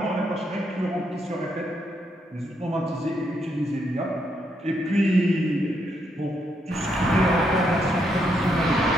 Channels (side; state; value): both; normal; correlation 0.77